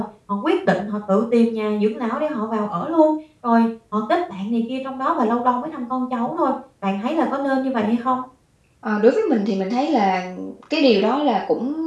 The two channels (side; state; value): both; identical; correlation 1.00